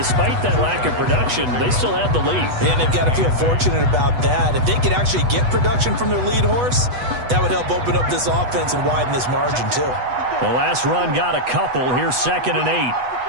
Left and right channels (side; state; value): left; late; 8.1 ms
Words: that lack of production, they still have the lead. And they've got to feel fortunate about that. If they could actually get production from their lead horse, that would help open up this offense and widen this margin, too. The last run got a couple. Here's 2nd and 8.